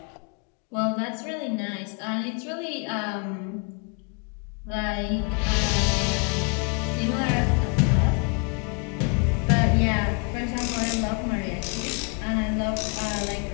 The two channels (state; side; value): quieter; right; 35.2 dB